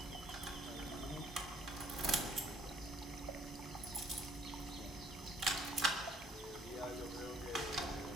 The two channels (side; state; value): both; normal; correlation 0.62